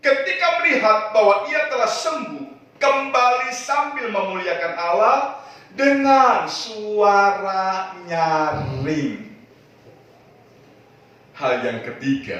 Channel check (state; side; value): identical; both; correlation 1.00